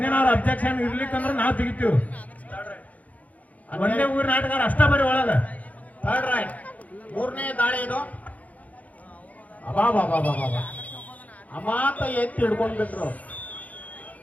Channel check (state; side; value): late; right; 0.073 ms